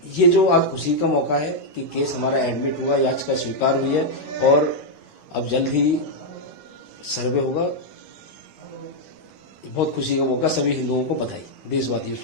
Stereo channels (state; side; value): late; right; 11 ms